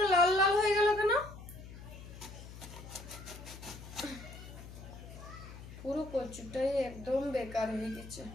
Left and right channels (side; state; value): left; noise; hum, 14 dB below the sound